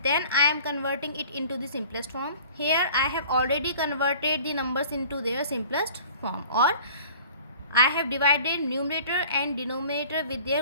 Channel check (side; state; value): both; inverted; correlation -0.46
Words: then I am converting it into the simplest form. Here I have already converted the numbers into their simplest form, or I have divided numerator and denominator with